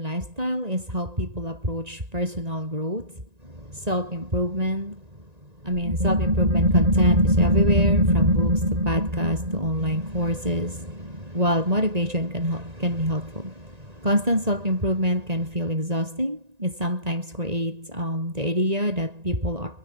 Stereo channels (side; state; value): left; late; 1.9 ms